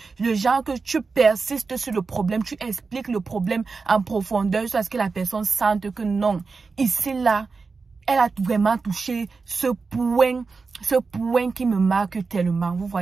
Le genre que tu persistes sur le problème, tu expliques le problème en profondeur jusqu'à ce que la personne sente que non, ici, là, elle a vraiment touché ce point qui me marque tellement. Vous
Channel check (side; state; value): left; quieter; 4.5 dB